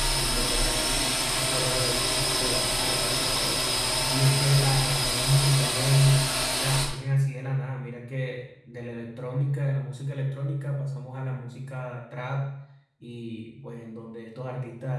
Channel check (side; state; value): both; identical; correlation 1.00